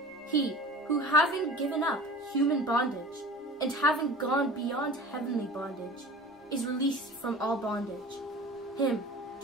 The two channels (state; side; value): normal; both; correlation 0.38